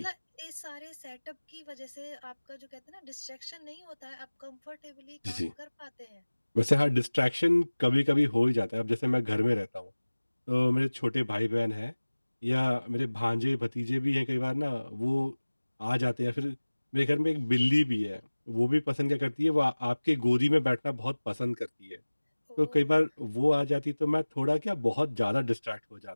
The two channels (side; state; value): both; inverted; correlation -1.00